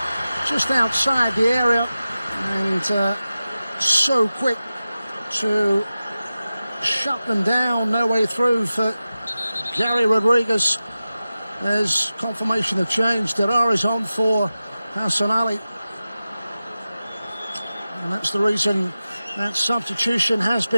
just outside the area, and so quick to shut them down. No way through for Gary Rodriguez. There's confirmation of change. Derar is on for Hassan Ali. And that's the reason that substitution has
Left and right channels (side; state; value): both; inverted; correlation -0.94